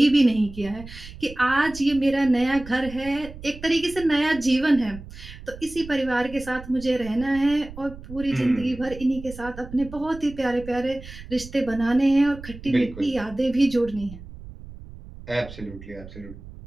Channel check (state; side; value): noise; right; rumble, 15 dB below the sound